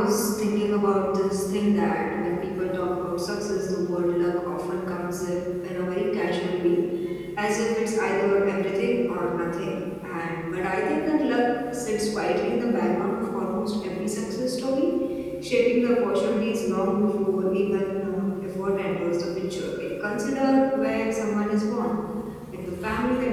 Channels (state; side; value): identical; both; correlation 1.00